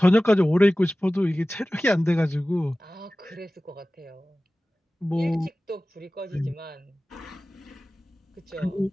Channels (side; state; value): both; normal; correlation 0.97